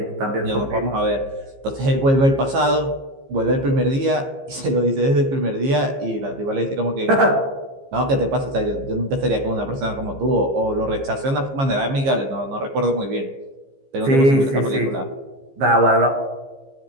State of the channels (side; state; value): left; late; 15 ms